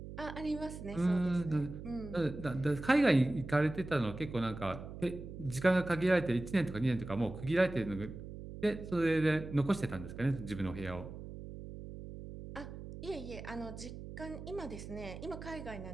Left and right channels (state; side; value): noise; right; hum, 11 dB below the sound